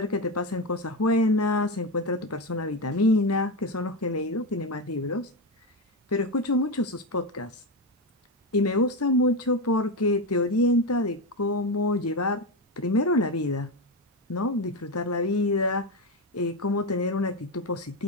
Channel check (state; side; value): normal; both; correlation 0.13